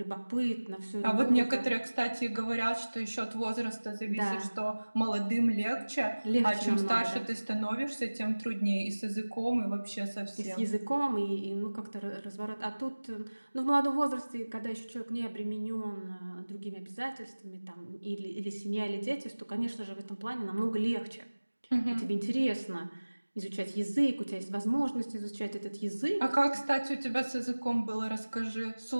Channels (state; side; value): inverted; both; correlation -1.00